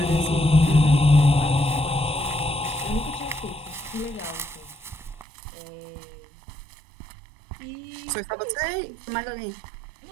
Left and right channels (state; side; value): drops out; left; at 5.2 s